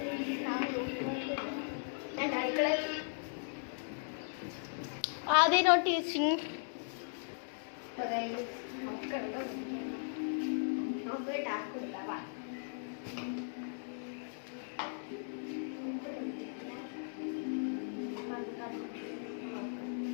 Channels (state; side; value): silent; right; digital silence